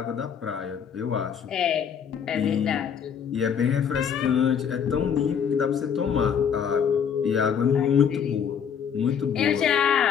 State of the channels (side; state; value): right; quieter; 7.6 dB